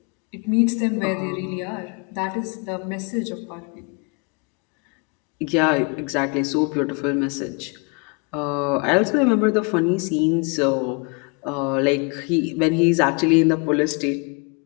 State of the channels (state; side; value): quieter; right; 32.4 dB